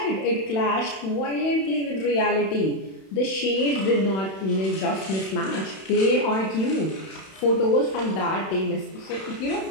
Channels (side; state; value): right; late; 31 ms